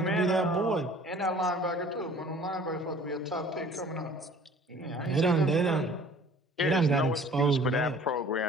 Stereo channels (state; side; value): normal; both; correlation 0.50